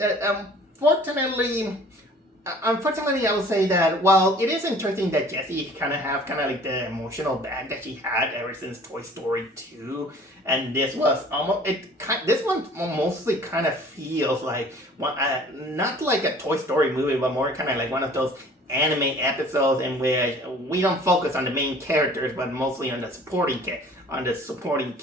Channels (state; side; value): normal; both; correlation 0.50